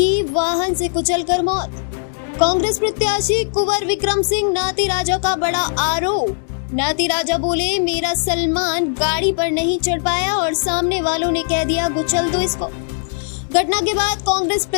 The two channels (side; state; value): right; silent; 67 dB below the other